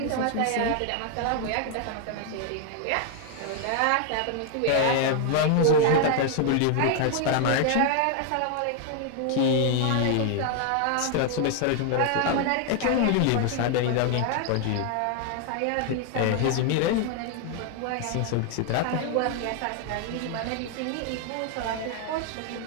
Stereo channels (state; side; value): different; both; correlation 0.00